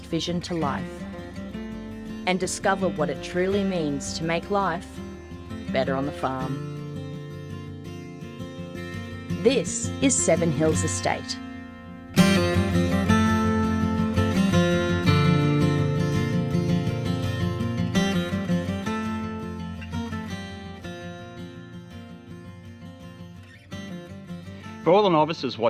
vision to life. And discover what it truly means to make life better on the farm. This is Seven Hills Estate. For all the novices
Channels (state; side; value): identical; both; correlation 1.00